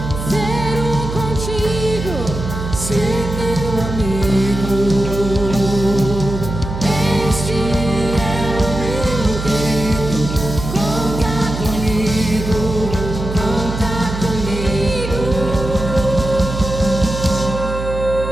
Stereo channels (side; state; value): right; noise; hum, 6 dB below the sound